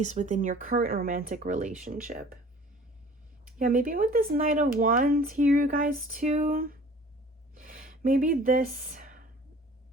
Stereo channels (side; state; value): both; normal; correlation 0.48